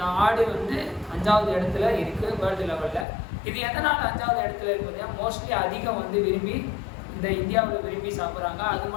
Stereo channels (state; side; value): drops out; right; at 3.1 s